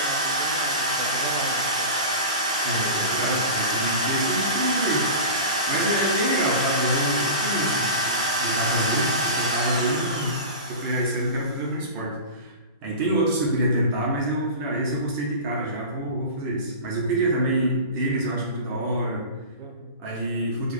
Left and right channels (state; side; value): inverted; both; correlation -0.31